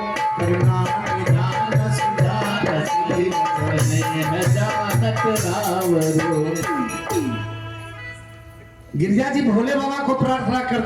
करुणा निधान सुजान स्नेह जानत रावरो। गिरिजा जी भोले बाबा को प्रार्थना कर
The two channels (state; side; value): identical; both; correlation 1.00